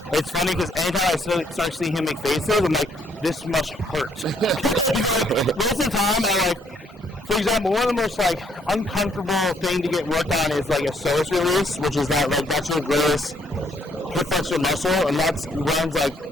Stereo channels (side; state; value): both; normal; correlation 0.69